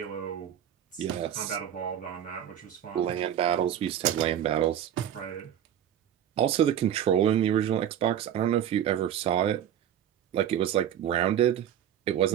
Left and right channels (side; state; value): left; quieter; 10.2 dB